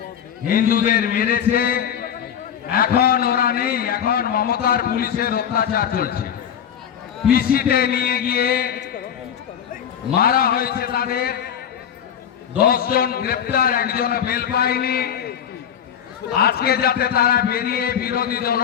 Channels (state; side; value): quieter; right; 8.9 dB